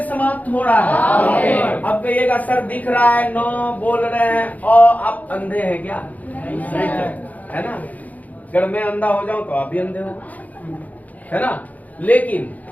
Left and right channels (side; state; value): right; late; 0.077 ms